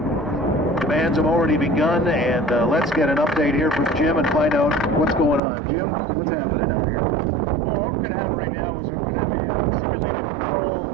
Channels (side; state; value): left; drops out; at 5.4 s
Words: Demands have already begun, and let's get an update here from Jim and find out what's going on. Jim, what's happening out here? Well, what we're going to have right now is we're going to have a simulated patrol